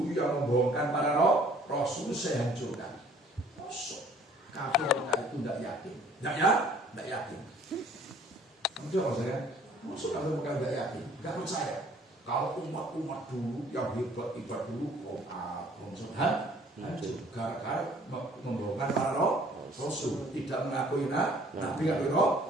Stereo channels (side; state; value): both; normal; correlation 0.56